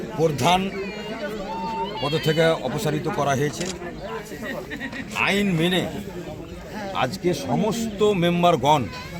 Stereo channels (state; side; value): identical; both; correlation 1.00